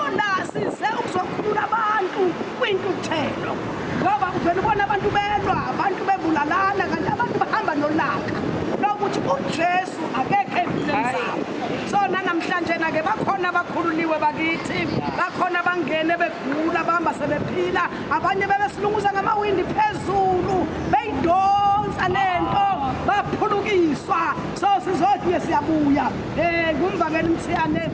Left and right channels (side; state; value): both; identical; correlation 1.00